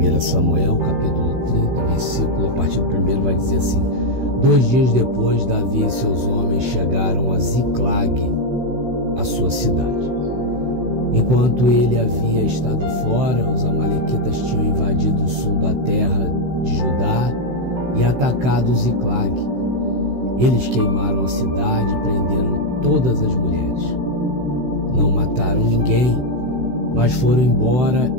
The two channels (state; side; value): late; left; 16 ms